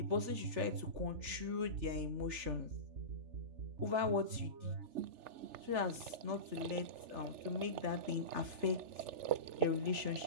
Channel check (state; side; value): late; left; 3.4 ms